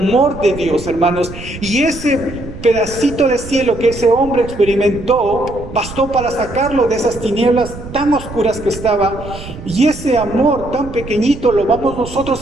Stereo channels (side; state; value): right; noise; rumble, 13 dB below the sound